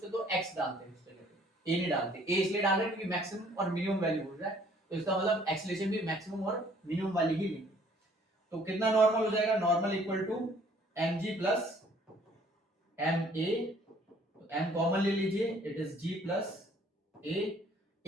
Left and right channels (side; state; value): both; normal; correlation 0.59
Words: तो x डालते हैं, a नहीं डालते। a इसलिए डाल रहे हैं क्योंकि मैक्सिमम और मिनिमम वैल्यू बोल रहा है, तो इसका मतलब एक्सेलरेशन भी मैक्सिमम और मिनिमम वाली ही लेंगे। तो कितना नॉर्मल हो जाएगा, normal equal to mg plus ma, m common ले लीजिए, it is g plus